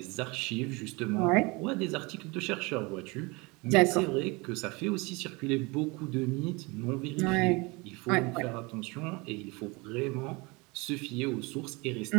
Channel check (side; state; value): left; quieter; 26.1 dB